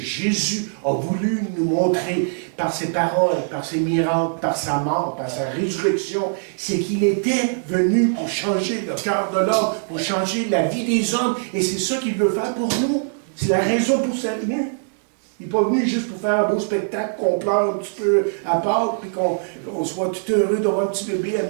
a voulu nous montrer par ses paroles, par ses miracles, par sa mort, par sa résurrection, c'est qu'il était venu pour changer le cœur de l'homme, pour changer la vie des hommes, et c'est ça qu'il veut faire pour nous. C'est la raison pour sa venue. Il n'est pas venu juste pour faire un beau spectacle, qu'on pleure un petit peu à Pâques, puis qu'on soit tout heureux d'avoir un petit bébé à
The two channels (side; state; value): left; silent; digital silence